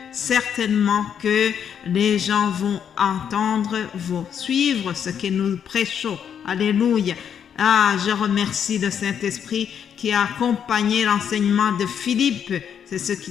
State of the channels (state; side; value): quieter; right; 8.2 dB